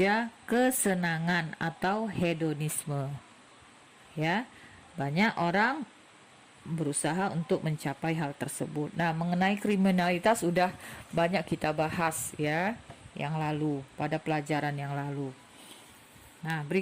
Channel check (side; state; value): both; identical; correlation 1.00